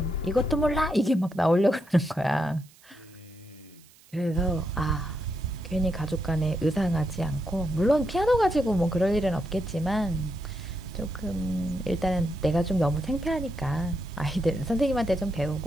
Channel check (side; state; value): right; noise; hiss, 27 dB below the sound